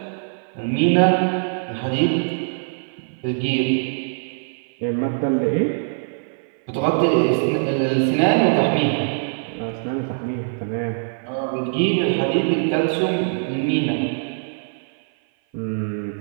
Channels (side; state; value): left; silent; 56 dB below the other